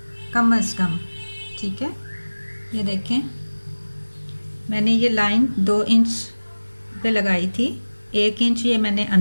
कम अज़ कम। ठीक है, ये देखें मैंने ये लाइन 2 इंच पे लगाई थी, 1 इंच ये मैंने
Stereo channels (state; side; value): inverted; both; correlation -1.00